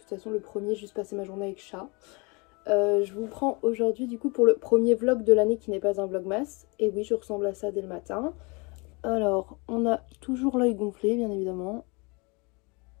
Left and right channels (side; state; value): right; quieter; 29.5 dB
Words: façon le premier j'ai juste passé ma journée avec chat. Je vous prends aujourd'hui du coup pour le premier vlog de l'année qui n'est pas un vlogmas. Et oui, je ressemble à ça dès le matin. Alors, on a toujours l'œil gonflé bien évidemment.